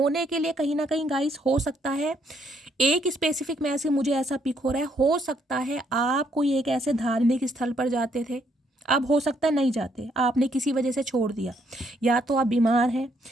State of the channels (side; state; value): both; normal; correlation 0.71